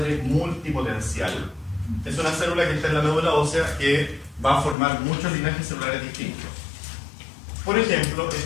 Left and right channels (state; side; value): drops out; right; at 4.8 s